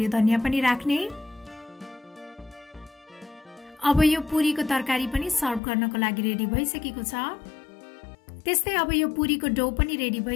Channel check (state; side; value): drops out; right; at 5.6 s